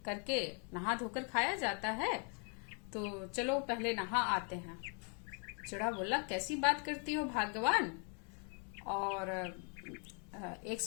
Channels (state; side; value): quieter; right; 39.0 dB